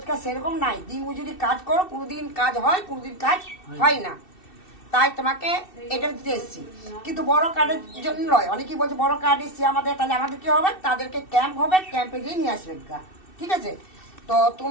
সেরকম নাই, দিন মজুরি কাজ করো, কোনোদিন কাজ হয়, কোনোদিন কাজ হয় না, তাই তোমাকে এটা দিতে এসেছি। কিন্তু বড় কার্ডের জন্য নয়। অনেকেই বলছে বড় কার্ড এসছে আমাদের, তাহলে আমাদের কি হবে? তাদেরকে ক্যাম্প হবে, ক্যাম্পে গিয়ে নিয়ে আসবে, ঠিক আছে? তো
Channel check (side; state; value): right; late; 2.6 ms